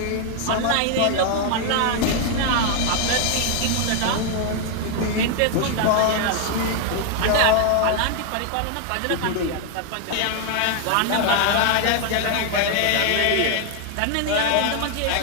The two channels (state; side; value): different; both; correlation 0.00